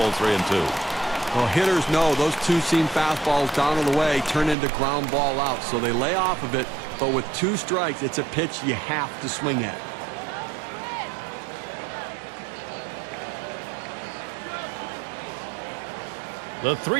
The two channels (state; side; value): drops out; left; at 4.5 s